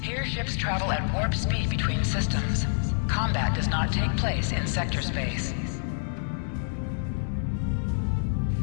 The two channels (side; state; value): right; silent; digital silence